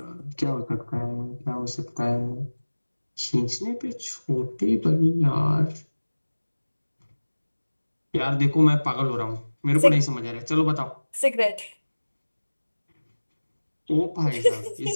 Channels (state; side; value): inverted; both; correlation -1.00